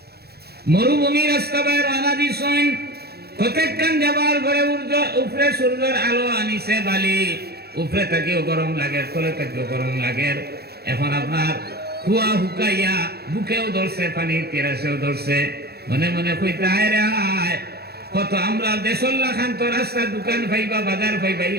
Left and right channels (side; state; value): left; late; 0.46 ms